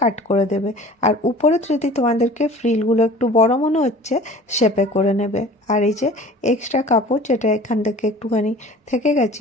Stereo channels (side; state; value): both; normal; correlation 0.44